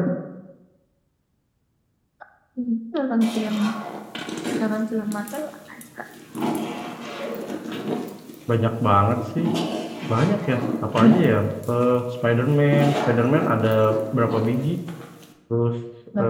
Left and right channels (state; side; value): identical; both; correlation 1.00